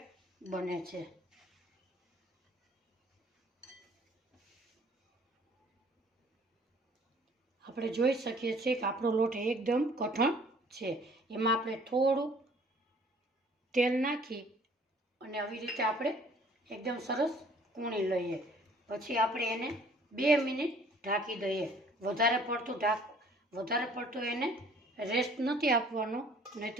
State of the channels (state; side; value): normal; both; correlation 0.56